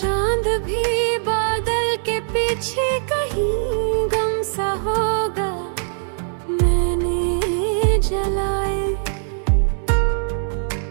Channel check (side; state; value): left; silent; digital silence